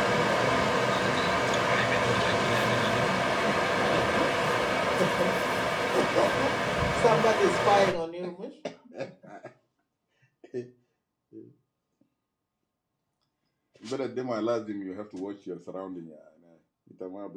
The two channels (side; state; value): both; identical; correlation 1.00